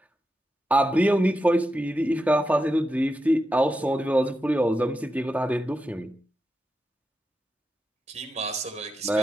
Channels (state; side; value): normal; both; correlation 0.88